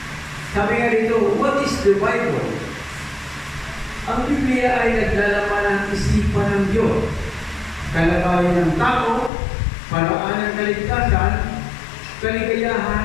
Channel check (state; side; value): drops out; right; at 9.3 s